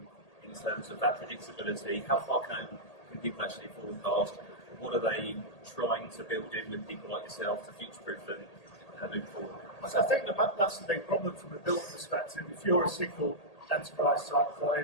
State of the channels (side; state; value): right; late; 1.8 ms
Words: in terms of that predictability? How far can people actually forecast? What are they trying to build in with people like yourself to future-proof them moving forward? So I think that's the big problem from a build perspective. If you're a single enterprise type